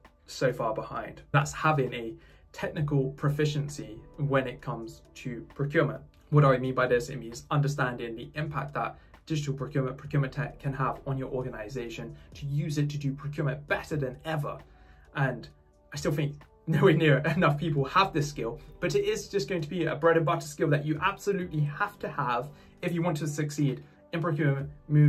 so far behind. That's having a technical proficiency when it comes to procurement. What do I mean by this? It means understanding the impact that digital procurement tech can have on your organization, to use it to do procurement better than ever. And I still think nowhere near enough people have this skill, but it is just going to be a bread and butter skill that you absolutely have to have if you want to succeed in procurement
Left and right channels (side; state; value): both; identical; correlation 1.00